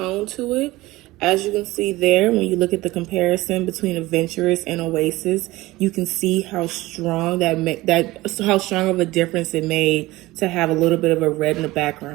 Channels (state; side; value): quieter; left; 18.9 dB